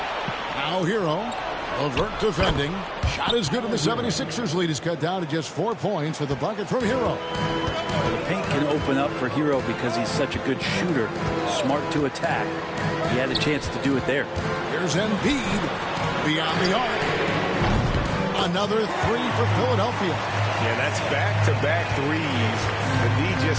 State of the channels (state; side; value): identical; both; correlation 1.00